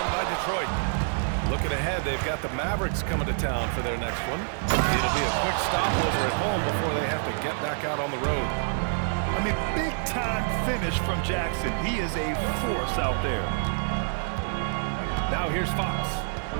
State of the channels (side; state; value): left; silent; digital silence